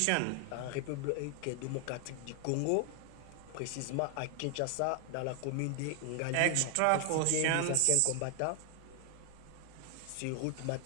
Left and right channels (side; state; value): both; different; correlation 0.00